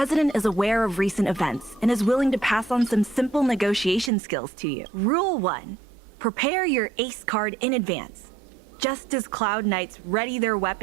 is aware of recent events and is willing to pass on some simple negotiation skills to you. Rule 1. Prepare your ace card in advance. Just as Cloud Knights ready their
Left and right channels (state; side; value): drops out; left; at 4.1 s